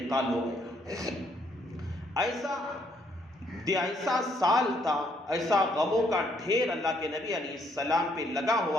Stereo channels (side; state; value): both; normal; correlation 0.70